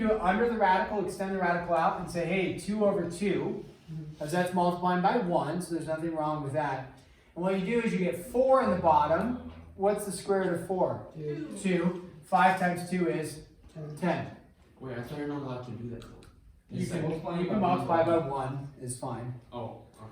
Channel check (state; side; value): identical; both; correlation 1.00